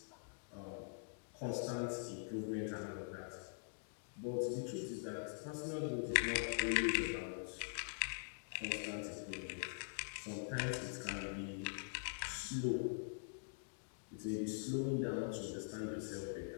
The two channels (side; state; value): right; silent; digital silence